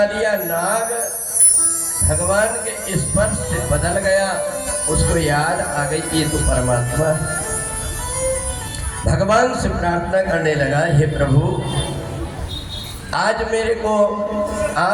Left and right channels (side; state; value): both; identical; correlation 1.00